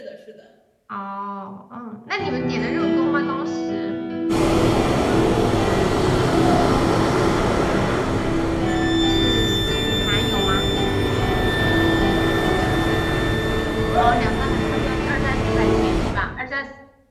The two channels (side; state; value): both; identical; correlation 1.00